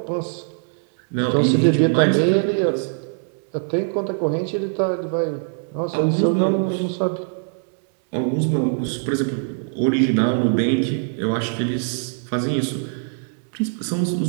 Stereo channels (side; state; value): left; silent; 64 dB below the other